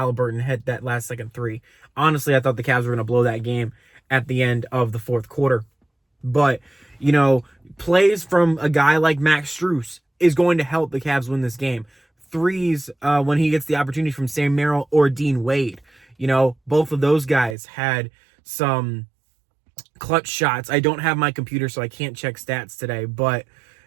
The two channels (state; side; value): drops out; left; at 17.6 s